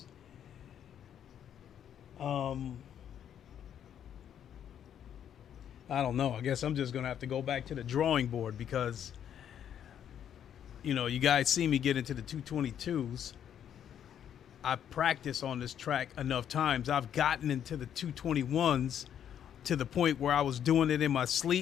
I don't know. I guess I'm just going to have to go back to the drawing board because, you know, you guys see me get into the 222s. I practice on this track enough times. I've gotten into the 221s to the point where I was doing it in my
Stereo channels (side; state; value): right; quieter; 9.4 dB